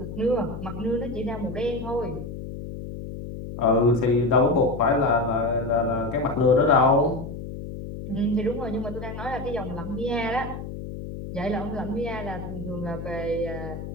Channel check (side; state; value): left; noise; hum, 9 dB below the sound